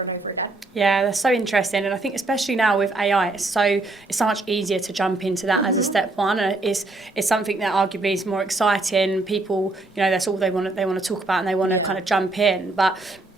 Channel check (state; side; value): quieter; left; 3.0 dB